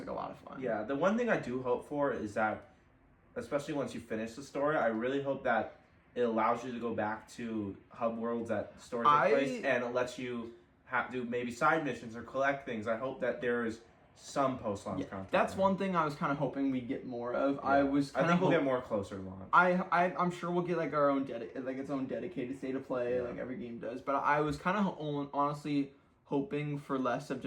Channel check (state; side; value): identical; both; correlation 1.00